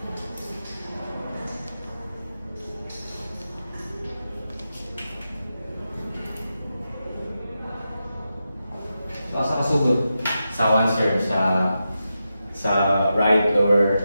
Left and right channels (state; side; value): inverted; both; correlation -0.89